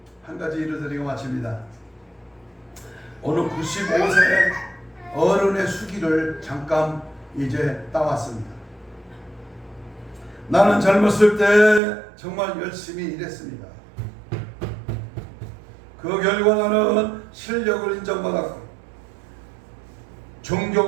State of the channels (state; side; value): drops out; left; at 11.8 s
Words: 한 가지 일을 드리고 마칩니다. 오늘 95세 어른의 수기를 잠깐 이제 따왔습니다. 나는 젊었을 때 정말 열심히 일했습니다. 그 결과 나는 실력을 인정받았고